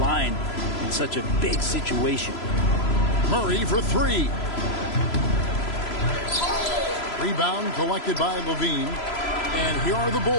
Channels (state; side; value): late; right; 3.0 ms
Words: in such a big situation. Murray for 3. Rebound collected by Levine. And here are the